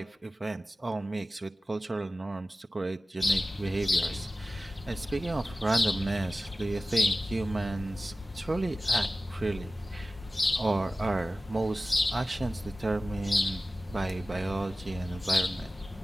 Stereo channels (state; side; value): normal; both; correlation 0.96